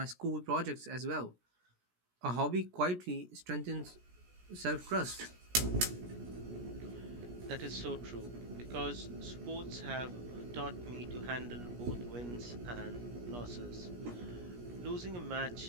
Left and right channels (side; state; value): left; late; 17 ms